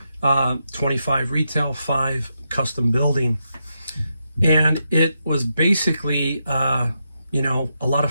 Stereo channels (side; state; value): both; inverted; correlation -0.84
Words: 25 retail, 5 custom building. And it was basically, a lot